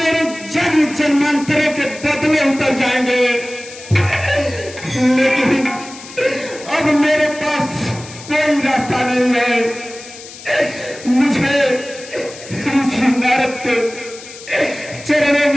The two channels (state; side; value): noise; left; hiss, 16 dB below the sound